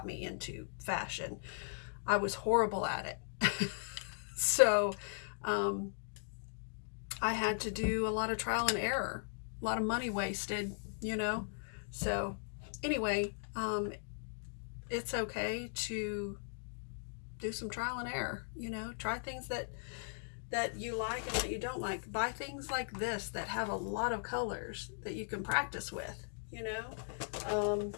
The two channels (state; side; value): silent; right; digital silence